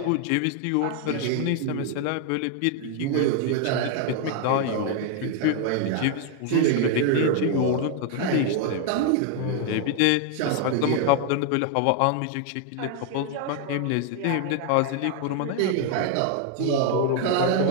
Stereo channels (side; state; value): both; different; correlation 0.01